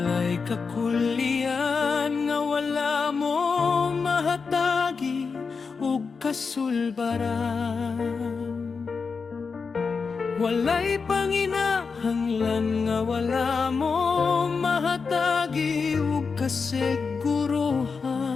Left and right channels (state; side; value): quieter; right; 5.1 dB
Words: kakulian nga wala mo mahatagi ug kasulbaran. Walay panginahanglan nga wala mo mahatagi ug kasiguruhan.